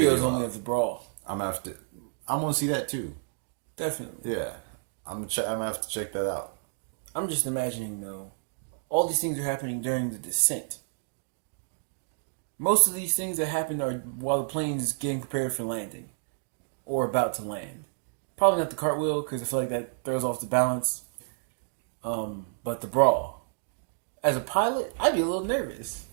is video only out. of the brawl. I'm gonna have to. I want to see that too. Definitely. Yeah, I'm gonna have to check that out. I'm just imagining, though, all these things are happening during the descent. Most of these things that happen are while the plane is getting prepared for landing or about to land. Probably not the cartwheel, because I feel like that throws off the balance. But the brawl. As a pilot, I'd be a little nervous.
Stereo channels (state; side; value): silent; left; digital silence